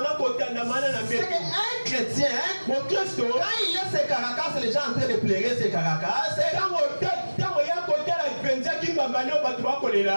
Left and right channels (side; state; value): both; inverted; correlation -1.00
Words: C'est qu'un chrétien, quand il a ses caracas, les gens sont en train de pleurer ses caracas.